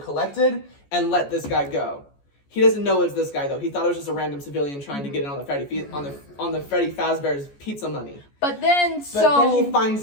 and let this guy go. He doesn't know it's this guy though. He thought it was just a random civilian trying to get in on the Freddy Fazbear's pizza money. But then he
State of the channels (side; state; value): right; late; 14 ms